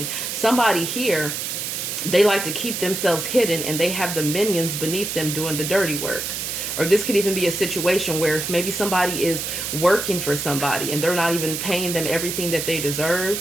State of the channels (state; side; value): noise; right; hiss, 4 dB below the sound